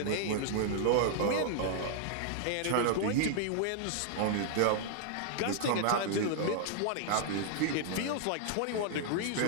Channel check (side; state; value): both; different; correlation 0.00